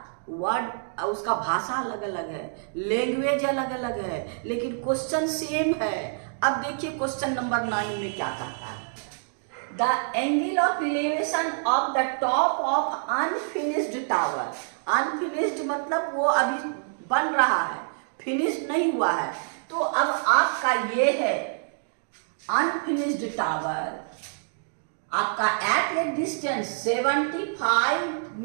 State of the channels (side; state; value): left; silent; digital silence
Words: वर्ड उसका भाषा अलग अलग है, लैंग्वेज अलग अलग है, लेकिन क्वेश्चन सेम है। अब देखिए क्वेश्चन नंबर 9 में क्या कहता है। The angle of elevation of the top of unfinished tower. Unfinished मतलब वो अभी बन रहा है, फिनिश नहीं हुआ है। तो अब आपका ये है अनफिनिश्ड टावर, आपका at a distance 75